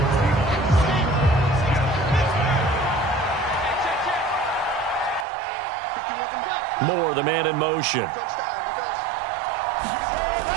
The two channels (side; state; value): left; drops out; at 5.2 s